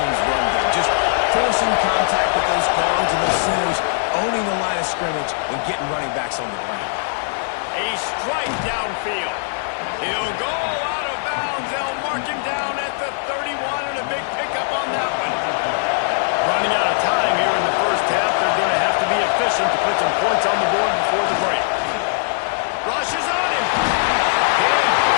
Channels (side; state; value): right; silent; 58 dB below the other